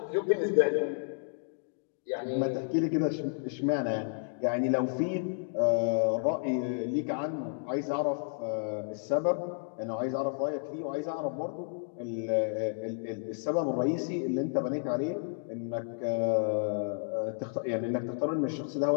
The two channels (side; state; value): right; silent; digital silence